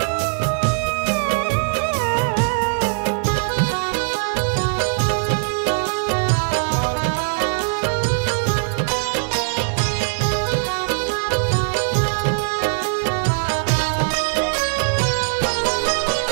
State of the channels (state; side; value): silent; left; 62 dB below the other